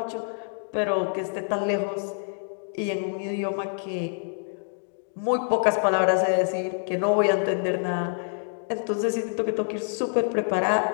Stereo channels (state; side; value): silent; right; digital silence